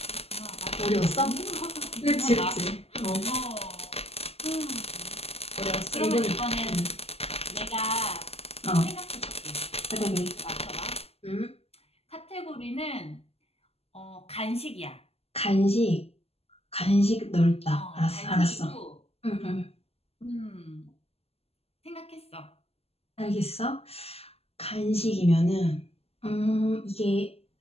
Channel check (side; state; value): right; late; 0.29 ms